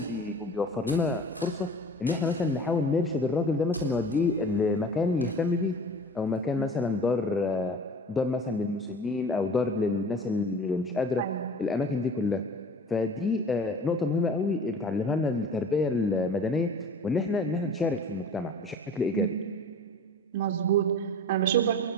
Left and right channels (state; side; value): normal; both; correlation 0.41